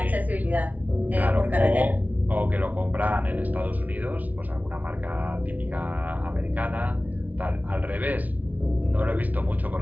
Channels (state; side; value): late; left; 0.074 ms